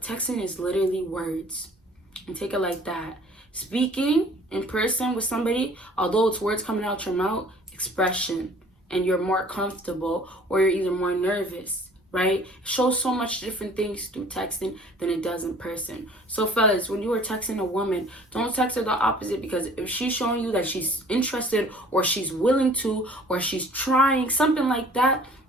texting is literally words. And take it like that. Speaking in person with somebody, although it's words coming out your mouth, expression, and you're more comfortable or you're either more nervous, right? It shows so much different things through texting than it does in person. So fellas, when you are texting a woman, don't text her the opposite, because if she's showing you that she's interested or she's willing to or she's trying something like that,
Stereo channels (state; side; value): normal; both; correlation 0.51